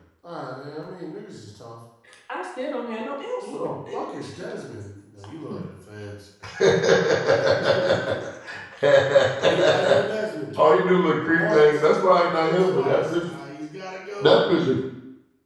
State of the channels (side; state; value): both; identical; correlation 1.00